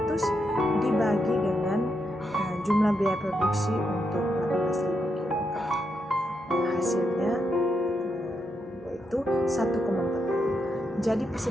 25.200 dibagi dengan jumlah biaya produksi untuk 18.000 kilogram. Hasilnya yaitu 1,40. Jadi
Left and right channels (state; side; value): normal; both; correlation 0.82